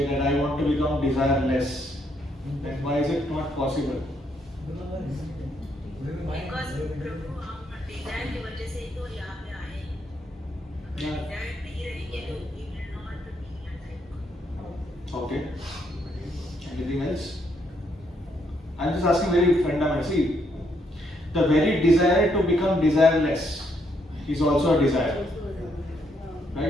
that I want to become desireless. Then why is it not possible? Because प्रभु हम Dzire की वजह से ही तो यहाँ पे आए हैं. Dzire नहीं रहेंगे तो we will not be alive. Okay. Anything else? I'm just asking very fundamental. See, the very desire to become desireless is also a desire.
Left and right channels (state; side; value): normal; both; correlation 0.74